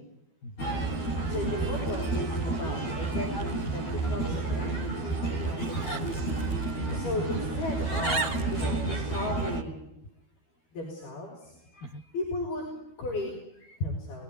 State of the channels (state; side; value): late; right; 12 ms